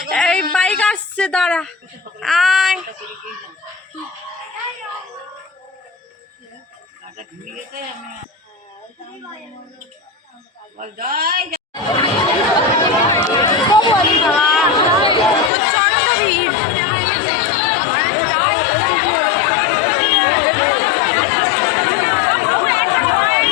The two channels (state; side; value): drops out; right; at 15.5 s